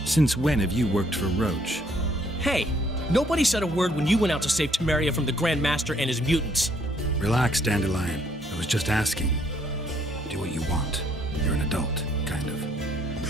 Since when have you worked for Roach? Hey, nobody said a word when you went out to save Temeria from the Grand Master and his mutants. Relax, Dandelion. I was just asking. Do what you want. You're an adult, kind of.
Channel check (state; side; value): normal; both; correlation 0.67